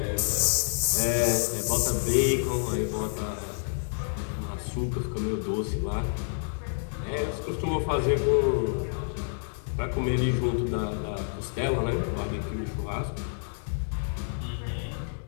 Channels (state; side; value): silent; right; digital silence